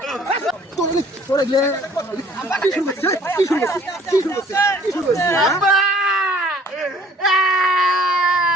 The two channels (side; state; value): both; normal; correlation 0.56